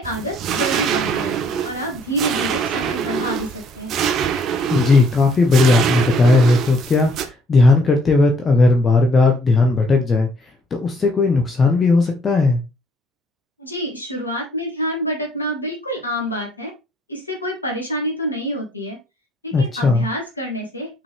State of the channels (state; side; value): normal; both; correlation 0.65